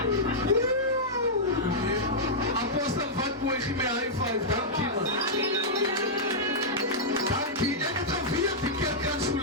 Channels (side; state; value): both; normal; correlation -0.09